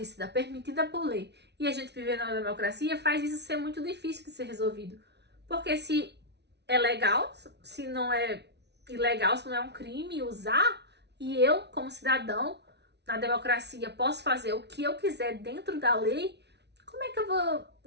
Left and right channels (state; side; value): late; left; 0.50 ms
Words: permitida por lei, e a gente viver na democracia, faz isso ser muito difícil de ser resolvido. Porque se é legal, se não é ilegal, se não é um crime usar, e eu, como cidadão, na democracia, posso fazer o que eu quiser dentro da lei, como é que eu vou